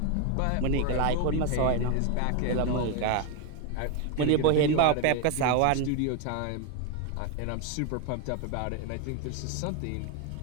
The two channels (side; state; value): both; different; correlation 0.01